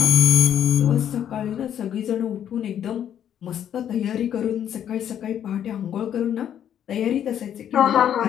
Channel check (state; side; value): quieter; right; 9.8 dB